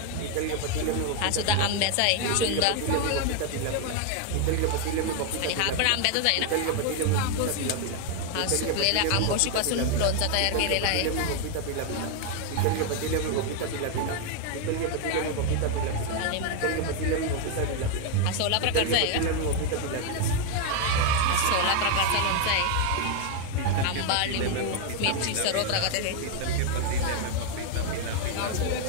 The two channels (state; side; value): different; both; correlation 0.00